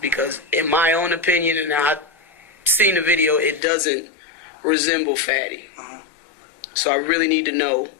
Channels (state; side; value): drops out; right; at 3.6 s